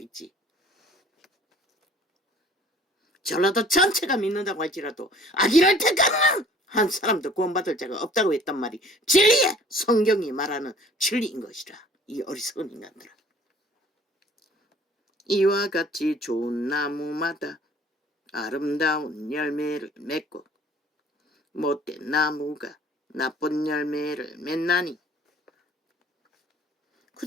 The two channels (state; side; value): normal; both; correlation 0.52